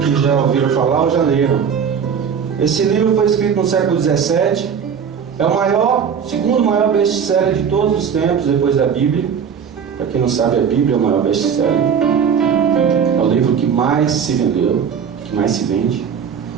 já ouviram falar ou já leram. Esse livro foi escrito no século XVII. É o segundo maior best-seller de todos os tempos, depois da Bíblia. Para quem não sabe, a Bíblia é o maior best-seller. É o livro que mais se vendeu, que mais se vende.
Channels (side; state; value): left; quieter; 7.2 dB